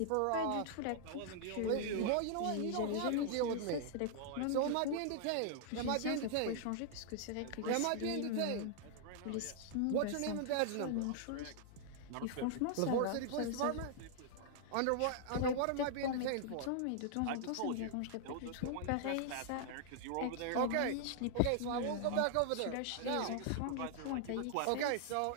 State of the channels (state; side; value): different; both; correlation -0.01